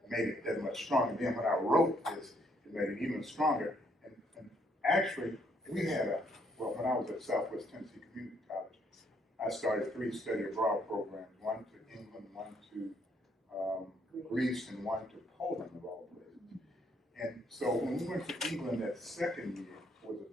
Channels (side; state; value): both; normal; correlation 0.70